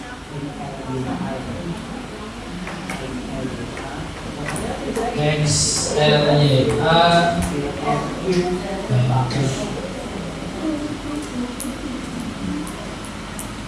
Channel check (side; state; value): both; identical; correlation 1.00